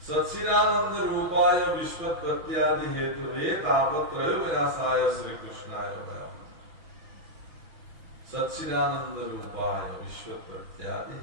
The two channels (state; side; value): late; left; 6.2 ms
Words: সচ্চিদানন্দ ৰূপায় বিশ্বৎপত্যাদি হেতু হে তাপত্ৰয় বিনাশায় শ্ৰীকৃষ্ণায় ভয়ঃ সচ্চিদানন্দ ৰূপায় বিশ্বৎপত্যাদি